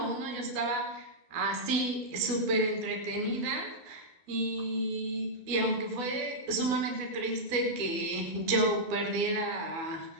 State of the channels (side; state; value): left; late; 12 ms